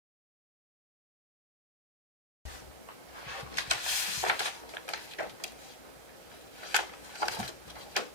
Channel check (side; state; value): left; late; 1.2 ms